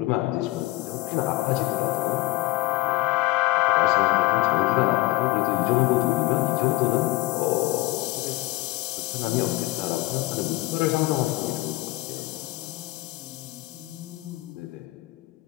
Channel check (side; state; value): right; quieter; 18.3 dB